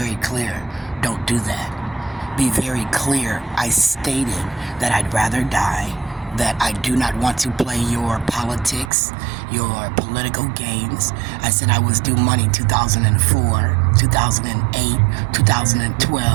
clear. Don't do that. Be very clear. I stated that I'd rather die, that I do not want to play your politics, your political games. I said I was due money 2004, 2008,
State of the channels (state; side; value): drops out; left; at 8.9 s